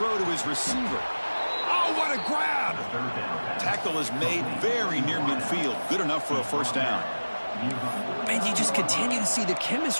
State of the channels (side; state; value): both; inverted; correlation -1.00